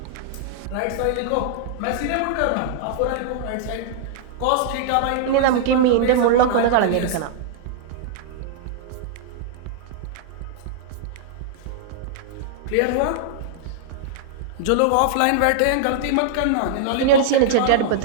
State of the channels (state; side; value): different; both; correlation -0.01